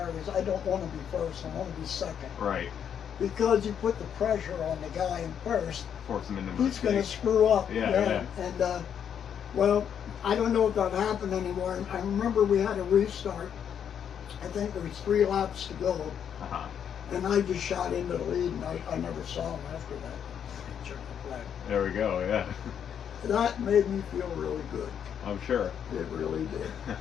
is I don't want to be first, I want to be second. Right. Because you put the pressure on the guy in first, Force them into he's going to mistakes. screw up. Yeah. And well, I don't know if that happened anymore. I remember we had a restart. I think there was 3 laps to go, Uh-huh. and I just shot into the lead, and I never saw him after that. Check the flag. There we go, yeah. That made me feel really good. I'm sure. It really did.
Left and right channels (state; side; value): quieter; right; 8.4 dB